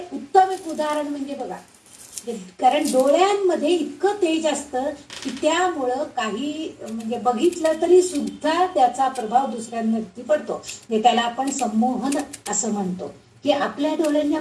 उत्तम एक उदाहरण म्हणजे बघा, कारण डोळ्यांमध्ये इतकं तेज असतं की त्यामुळं काही म्हणजे बघितलं तरी सुद्धा त्याचा प्रभाव दुसऱ्यांवरती पडतो. त्याला आपण संमोहन असं म्हणतो, की आपल्या डोळ्यांनी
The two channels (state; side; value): identical; both; correlation 1.00